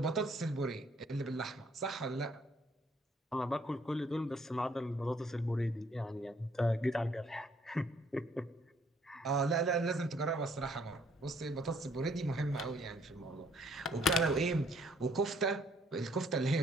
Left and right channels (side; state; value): both; normal; correlation 0.65